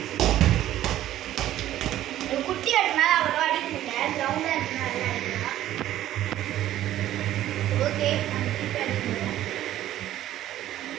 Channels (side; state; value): left; quieter; 13.1 dB